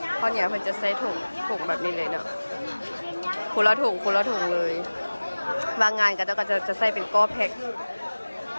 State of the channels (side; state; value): both; inverted; correlation -1.00